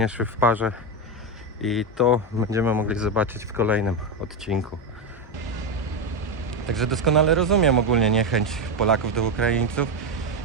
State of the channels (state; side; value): normal; both; correlation 0.10